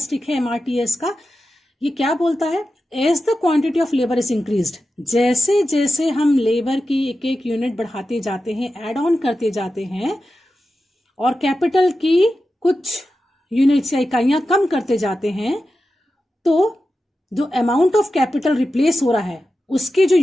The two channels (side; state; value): both; normal; correlation 0.92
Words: है MRTS का. ये क्या बोलता है? As the quantity of labour is increased, जैसे जैसे हम लेबर की एक एक यूनिट बढ़ाते जाते हैं, एड ऑन करते जाते हैं, और कैपिटल की कुछ यूनिट्स या इकाइयां कम करते जाते हैं, तो जो अमाउंट ऑफ कैपिटल रिप्लेस हो रहा है उसके जो